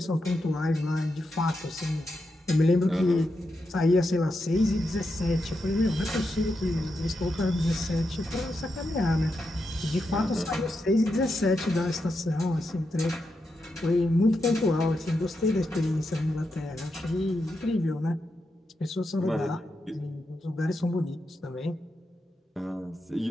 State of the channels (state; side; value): normal; both; correlation 0.86